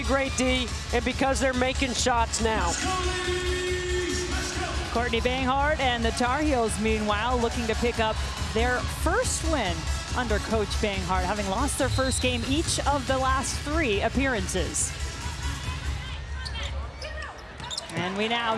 great D and because they're making shots now. Courtney Banghart and the Tar Heels, meanwhile, looking to pick up their first win under Coach Banghart, having lost their first game each of the last 3 appearances. And we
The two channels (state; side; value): identical; both; correlation 1.00